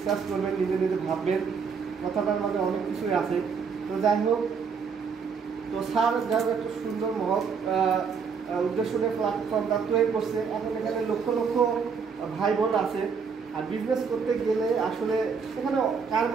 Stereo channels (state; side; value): quieter; left; 5.9 dB